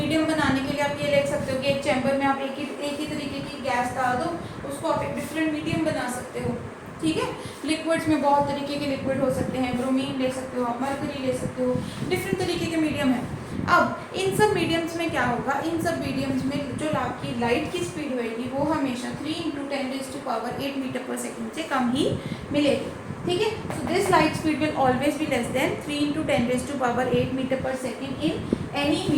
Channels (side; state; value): both; identical; correlation 1.00